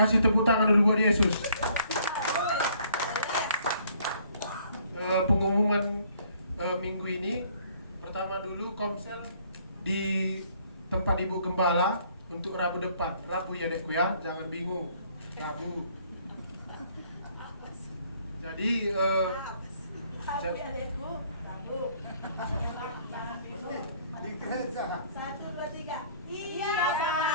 tepuk tangan dulu buat Yesus. Pengumuman minggu ini, pertama dulu komsel di tempat Ibu Gembala untuk Rabu depan. Rabu ya dekku ya, jangan bingung. Rabu. Jadi Di gereja. 1, 2, 3. Iya,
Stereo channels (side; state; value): both; inverted; correlation -0.62